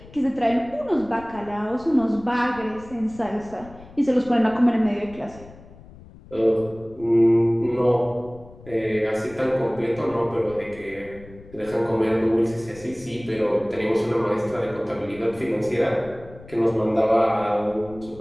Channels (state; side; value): noise; left; rumble, 20 dB below the sound